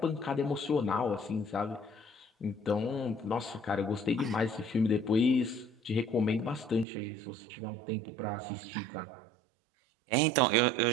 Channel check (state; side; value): drops out; left; at 6.9 s